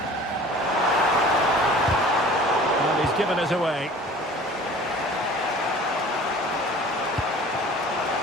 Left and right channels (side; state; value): both; normal; correlation 0.46